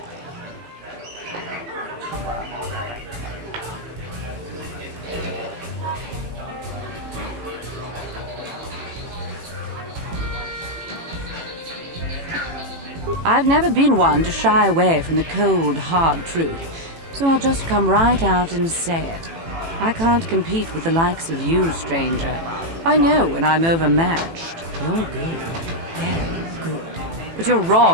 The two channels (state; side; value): late; left; 18 ms